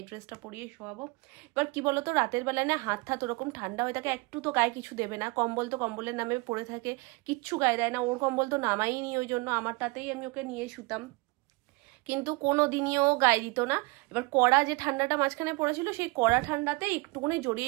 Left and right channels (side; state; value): left; quieter; 26.4 dB